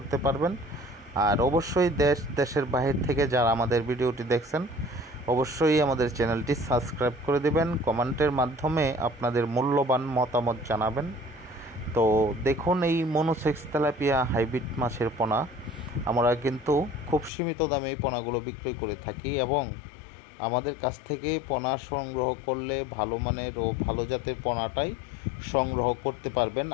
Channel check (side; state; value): right; drops out; at 17.3 s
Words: পারবেন। আর অবশ্যই দেশের বাহির থেকে যারা আমাদের ভিডিওটি দেখছেন অবশ্যই আমাদের চ্যানেলটি সাবস্ক্রাইব করে দেবেন, কমেন্টের মাধ্যমে আপনাদের মূল্যবান মতামত জানাবেন। তো দেখুন, এই মনোসেক্স তেলাপিয়া হাইব্রিড মাছের পোনা আমরা কিন্তু খুব সীমিত দামে এই পোনাগুলো বিক্রয় করে থাকি এবং আমাদের কাছ থেকে পোনা সংগ্রহ করলে ভালো মানের ও ভালো জাতের পোনাটাই সংগ্রহ করতে পারবেন।